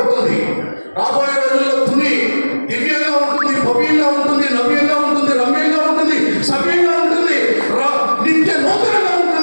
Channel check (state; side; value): inverted; both; correlation -1.00